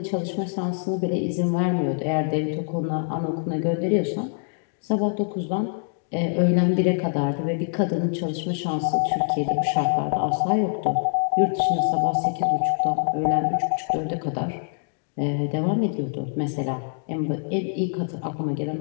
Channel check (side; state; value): right; silent; digital silence